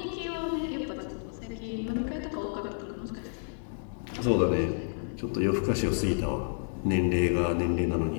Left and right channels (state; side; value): silent; right; 58 dB below the other